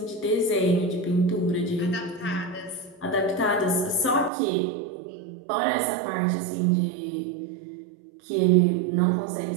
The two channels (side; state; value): left; drops out; at 4.3 s